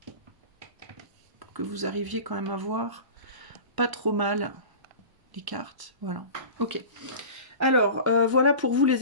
pour que vous arriviez quand même à voir pas trop mal les cartes. Voilà. Ok. Alors, voilà pour vous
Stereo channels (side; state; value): left; late; 1.0 ms